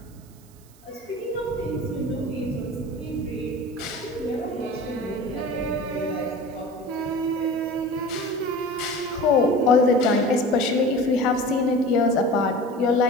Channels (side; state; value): right; noise; hiss, 28 dB below the sound